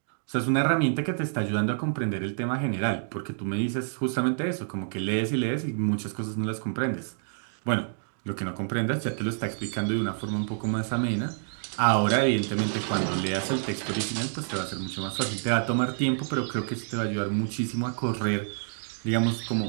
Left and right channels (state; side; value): silent; left; digital silence